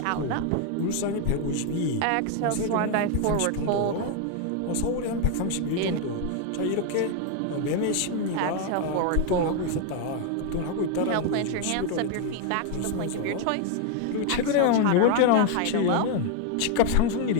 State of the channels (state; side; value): different; both; correlation 0.01